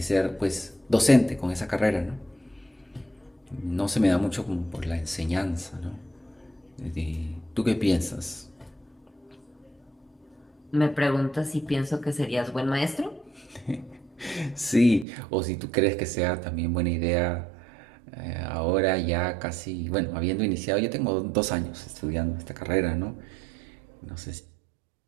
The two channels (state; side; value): drops out; left; at 15.1 s